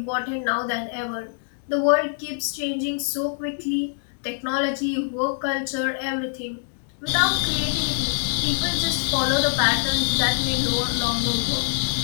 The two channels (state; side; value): silent; right; digital silence